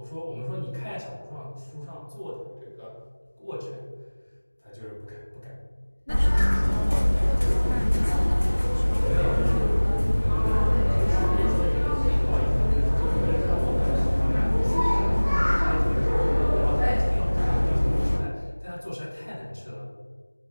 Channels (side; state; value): both; inverted; correlation -1.00